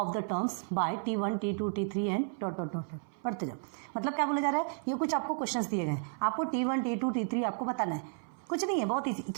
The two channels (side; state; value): left; silent; 56 dB below the other